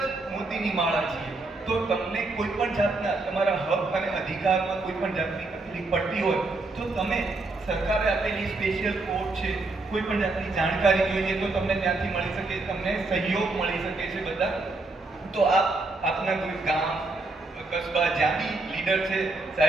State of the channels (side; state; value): left; quieter; 3.2 dB